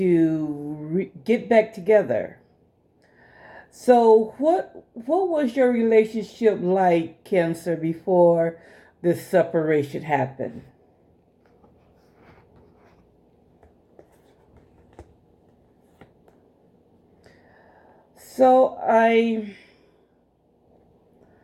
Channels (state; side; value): identical; both; correlation 1.00